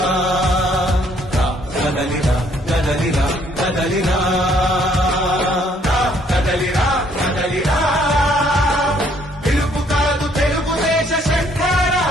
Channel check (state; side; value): normal; both; correlation 0.65